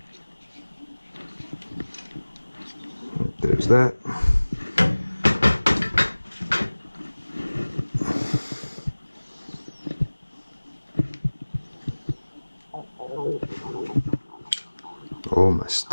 There's that. Oh, my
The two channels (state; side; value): inverted; both; correlation -1.00